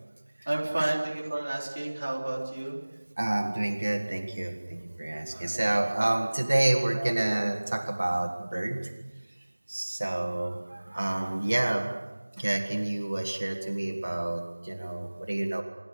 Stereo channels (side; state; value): both; inverted; correlation -1.00